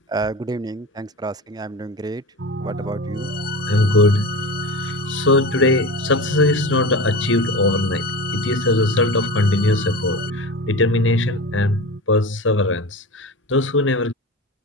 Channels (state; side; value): normal; both; correlation 0.29